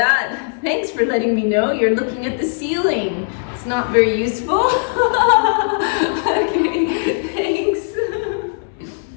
Thanks for letting me know. You're looking at the ceiling. It's not very useful. Okay, thanks.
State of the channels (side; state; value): right; silent; 67 dB below the other